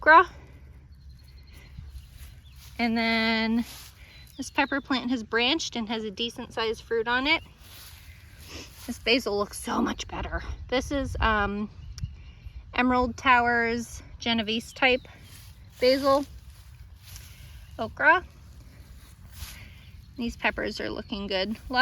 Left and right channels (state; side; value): identical; both; correlation 1.00